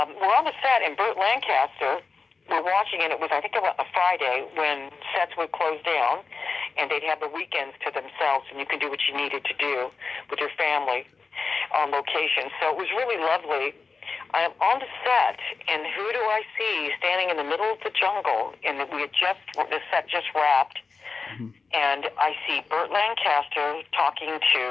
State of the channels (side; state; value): right; quieter; 4.5 dB